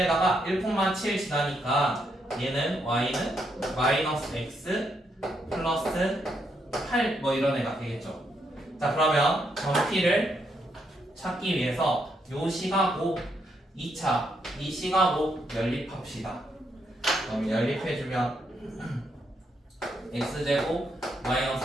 1,7 지나니까 얘는 y는 마이너스 x 플러스 8 뭐 이런 애가 되겠죠. 자 그러면 점피를 찾기 위해서 요 시가고 2차 이 시가고 연립합시다. 그럼 연립해주면 x제곱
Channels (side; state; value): both; normal; correlation 0.77